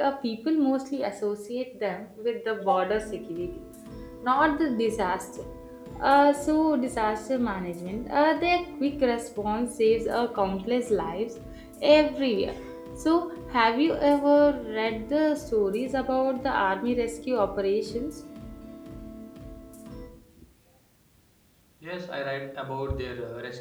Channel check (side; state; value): both; identical; correlation 1.00